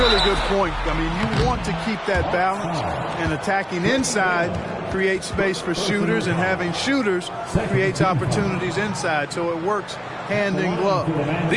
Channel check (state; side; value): identical; both; correlation 1.00